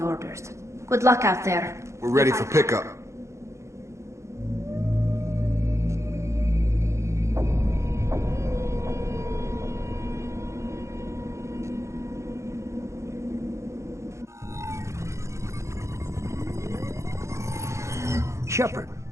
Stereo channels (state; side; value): late; left; 0.14 ms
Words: orders. Good luck out there. We're ready for pickup. Shepard,